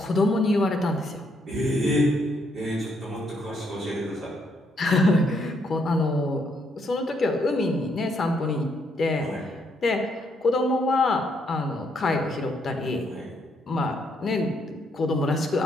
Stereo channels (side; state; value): both; normal; correlation 0.73